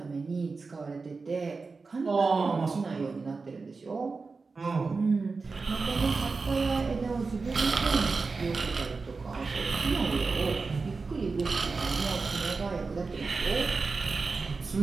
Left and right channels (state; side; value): quieter; left; 4.3 dB